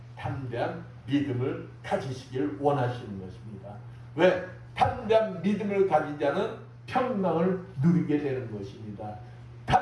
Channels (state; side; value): identical; both; correlation 1.00